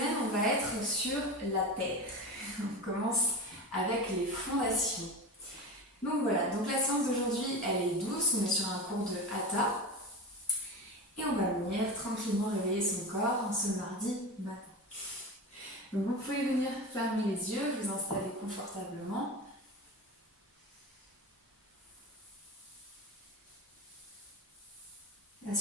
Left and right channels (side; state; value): both; normal; correlation 0.26